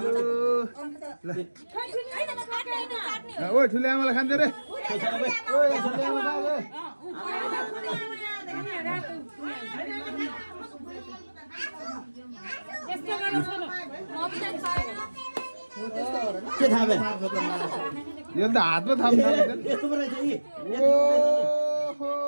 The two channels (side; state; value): both; inverted; correlation -1.00